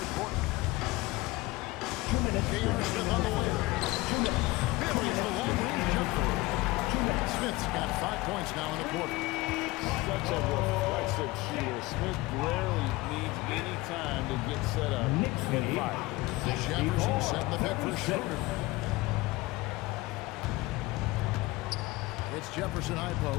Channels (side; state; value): right; quieter; 20.5 dB